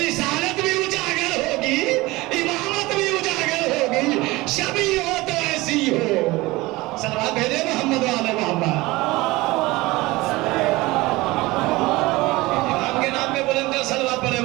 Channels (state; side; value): quieter; left; 20.9 dB